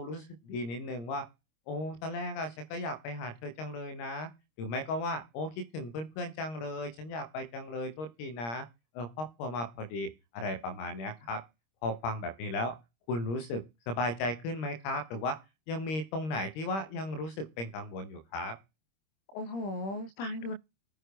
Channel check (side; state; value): right; late; 26 ms